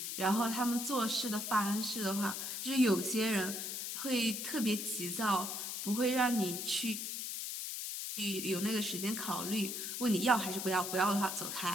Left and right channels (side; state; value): left; noise; hiss, 4 dB below the sound